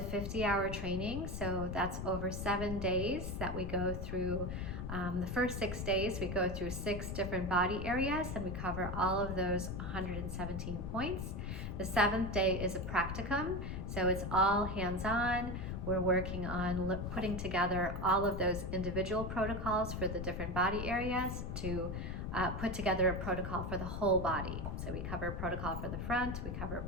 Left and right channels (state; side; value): noise; left; rumble, 4 dB below the sound